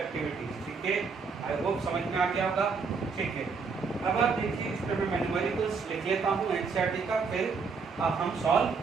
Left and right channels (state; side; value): quieter; left; 5.0 dB